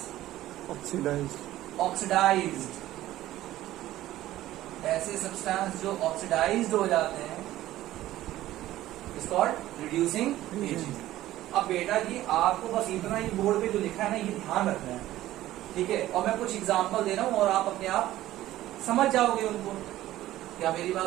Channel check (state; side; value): quieter; left; 14.8 dB